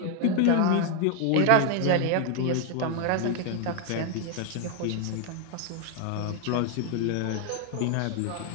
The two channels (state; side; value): different; both; correlation 0.00